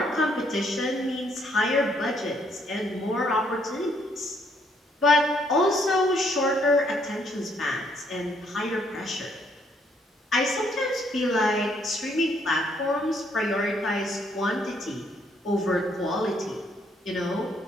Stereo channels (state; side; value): normal; both; correlation 0.69